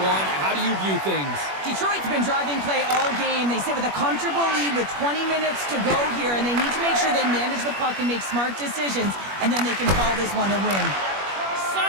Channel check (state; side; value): late; left; 21 ms